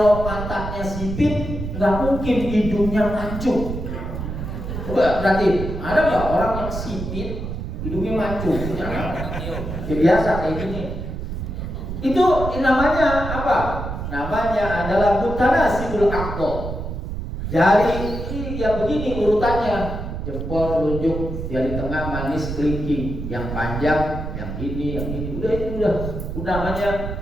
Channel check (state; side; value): noise; right; rumble, 6 dB below the sound